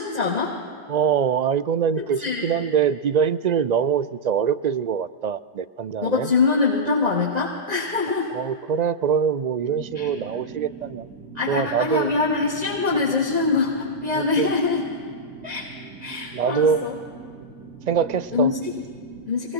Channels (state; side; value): late; left; 1.9 ms